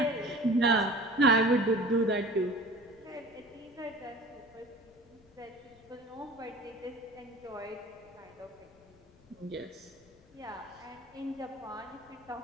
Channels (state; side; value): noise; left; rumble, 28 dB below the sound